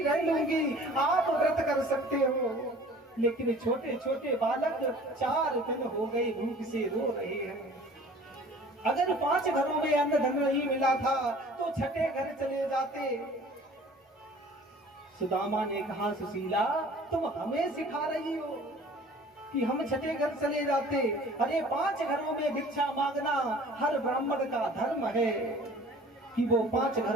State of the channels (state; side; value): normal; both; correlation 0.48